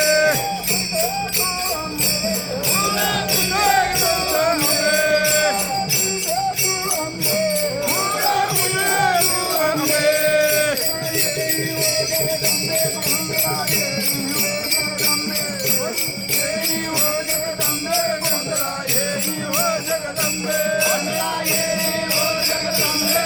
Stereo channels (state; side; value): identical; both; correlation 1.00